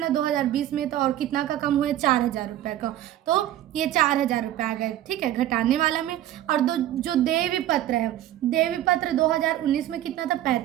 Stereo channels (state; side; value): quieter; left; 12.8 dB